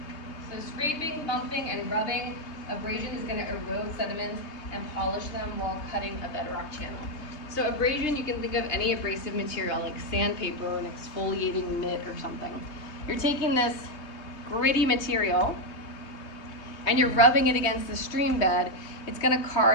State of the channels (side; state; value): right; late; 3.2 ms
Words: So scraping, bumping, and rubbing, abrasion is going to erode sediments and polish them while cutting a bedrock channel. So abrasion, you can think of any abrasive material like sandpaper or an exfoliating mitt or something. You're taking this gritty material and you're rubbing it against the stream bed. It's going to